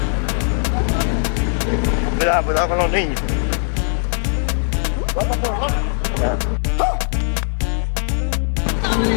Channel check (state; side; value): silent; right; 59 dB below the other